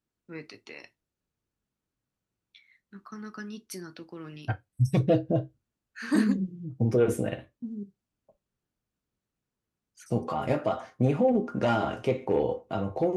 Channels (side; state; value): both; identical; correlation 1.00